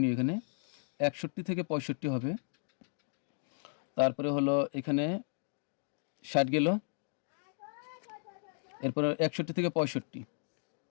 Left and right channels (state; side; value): silent; right; digital silence